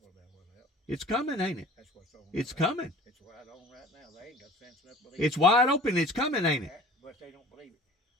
about what else. It's coming, ain't it? That's what's on. It's coming. It's wide on right now. They ain't got sense enough to believe it's wide open. It's coming, ain't it? But they don't believe it.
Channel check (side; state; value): both; normal; correlation 0.46